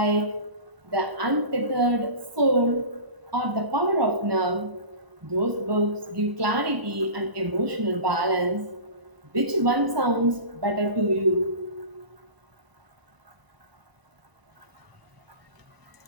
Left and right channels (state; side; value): late; left; 1.0 ms